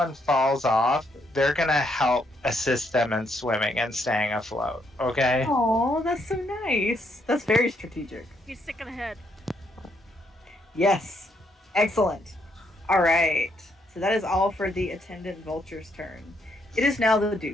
falls off, they're gonna help assist them in swimming and staying afloat, okay? Oh, that's so nice. That's very strategic. He's sticking ahead. Yes. Excellent. All right. So that is all for the attendant vulture's turn. It is now the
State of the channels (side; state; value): both; normal; correlation 0.74